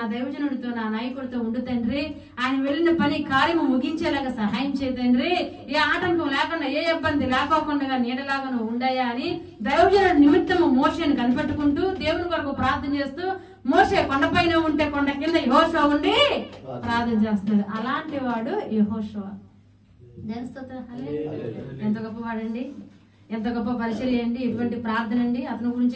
దైవజనుడితో, నా నాయకుడితో ఉండు తండ్రి. ఆయన వెళ్ళిన పని కార్యము ముగించేలాగా సహాయం చేయ తండ్రి. ఏ ఆటంకం లేకుండా, ఏ ఇబ్బంది లేకోకుండా నీడలాగా నువ్వు ఉండయా అని దైవజనుడి నిమిత్తము మోషేను కనిపెట్టుకుంటూ దేవుని కొరకు ప్రార్థన చేస్తూ, మోషే కొండపైన ఉంటే కొండ కింద యెహోషువ ఉండి ప్రార్థన చేస్తున్నాడు. అలాంటి వాడు యెహోషువ. ఎంత గొప్పవాడండి, ఎంత గొప్ప పరిచర్య అండి, ఎటువంటి ప్రార్థన అండి. అతని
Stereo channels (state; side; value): identical; both; correlation 1.00